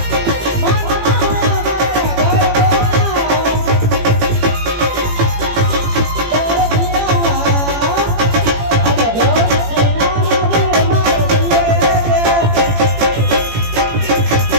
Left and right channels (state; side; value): late; left; 18 ms